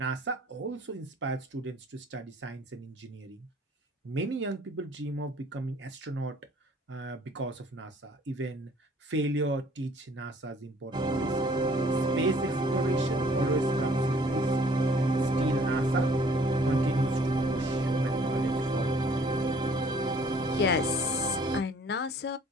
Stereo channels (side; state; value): both; normal; correlation 0.57